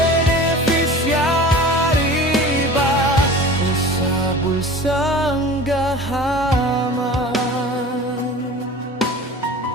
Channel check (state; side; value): normal; both; correlation 0.39